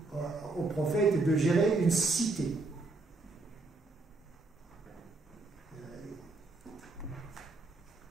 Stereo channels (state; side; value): quieter; left; 3.3 dB